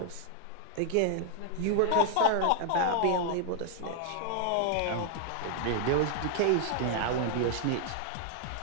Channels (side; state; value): both; different; correlation 0.00